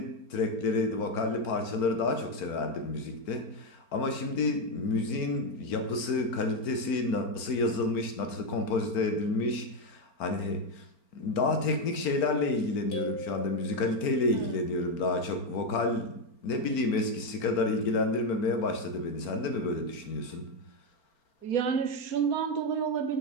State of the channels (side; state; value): right; late; 4.4 ms